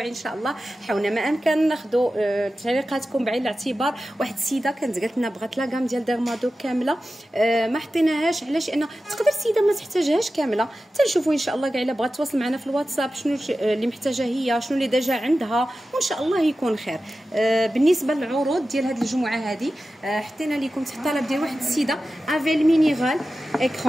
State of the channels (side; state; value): both; normal; correlation 0.94